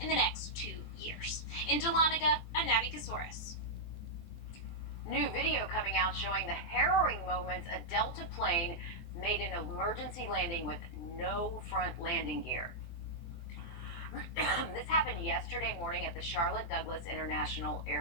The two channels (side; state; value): right; late; 24 ms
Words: the next 2 years. In Dahlonega, I'm Navi Kasoris. New video coming out showing the harrowing moments a Delta plane made an emergency landing with no front landing gear. This happened yesterday morning at the Charlotte Douglas International